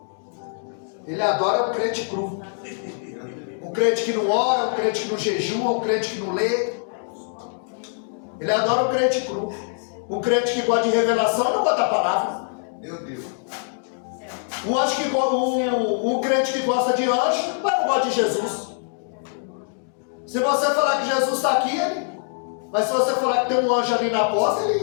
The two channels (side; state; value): right; silent; 63 dB below the other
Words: Ele adora um crente cru. Um crente que não ora, um crente que não jejua, um crente que não lê. Ele adora um crente cru. Um crente que gosta de revelação e não gosta da palavra. Meu Deus. Um crente que gosta de anjo, mas não gosta de Jesus. Se você falar que Jesus está aqui, mas se você falar que tem um anjo ali na porta,